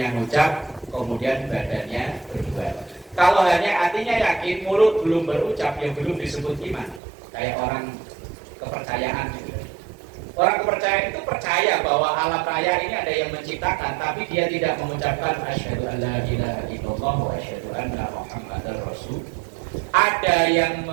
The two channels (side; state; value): left; drops out; at 7.0 s